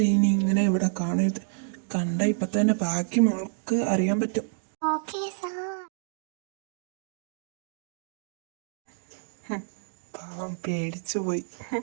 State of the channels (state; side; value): silent; left; digital silence